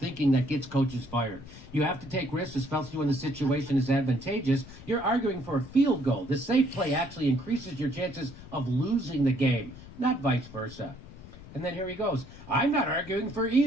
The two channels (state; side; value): noise; left; rumble, 17 dB below the sound